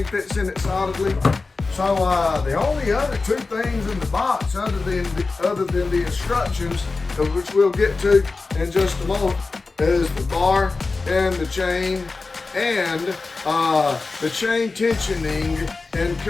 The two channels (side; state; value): right; quieter; 3.9 dB